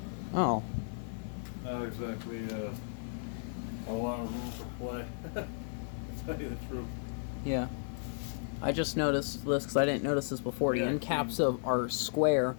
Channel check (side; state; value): right; silent; 55 dB below the other